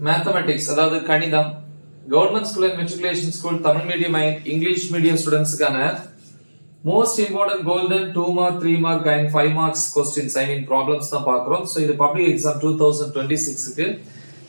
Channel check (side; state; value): both; inverted; correlation -1.00